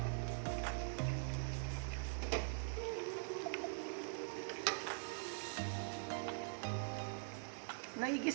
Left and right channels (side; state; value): left; silent; digital silence